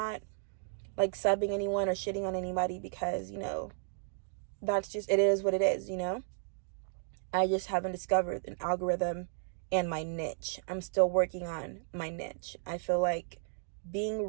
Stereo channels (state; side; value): silent; left; digital silence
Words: like subbing anyone or shitting on anybody because, you know, that's just, it is what it is, you know? I just haven't discovered an algorithm and my niche. I'm still working on my niche. I feel like being